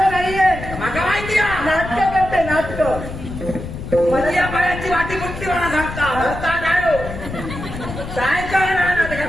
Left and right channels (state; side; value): noise; left; rumble, 9 dB below the sound